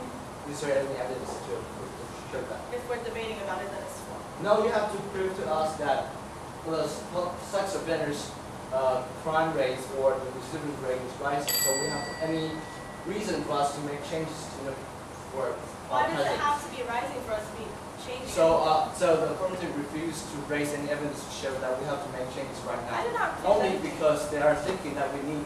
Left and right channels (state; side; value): identical; both; correlation 1.00